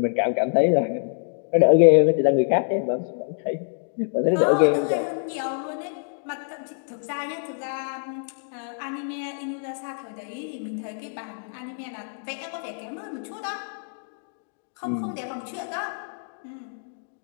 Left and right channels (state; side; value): silent; right; digital silence